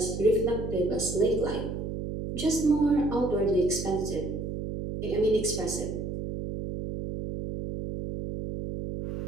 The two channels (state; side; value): noise; right; hum, 5 dB below the sound